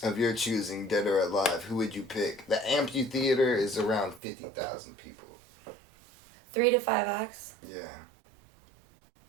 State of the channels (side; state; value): left; drops out; at 4.2 s